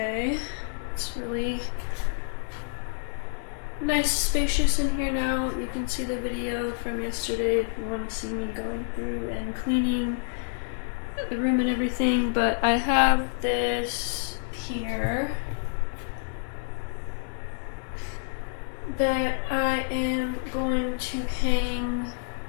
It's really nice, spacious in here now. You can see the video from yesterday if you want to see me going through and cleaning the room and everything. But I have this here that I am going to hang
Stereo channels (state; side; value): silent; right; 59 dB below the other